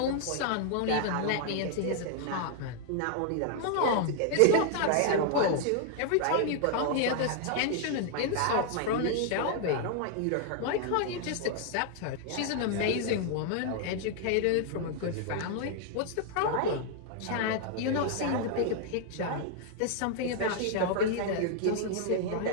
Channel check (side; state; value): both; different; correlation 0.00